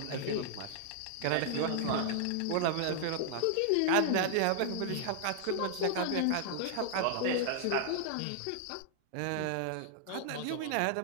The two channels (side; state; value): both; different; correlation -0.01